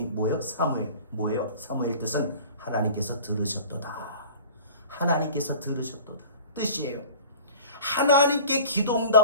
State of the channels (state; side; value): inverted; both; correlation -0.43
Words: 뭐예요? 사무엘. 뭐예요? 사무엘 뜻은 하나님께서 들으셨도다. 하나님께서 들으셨도다 뜻이에요. 하나님께 기도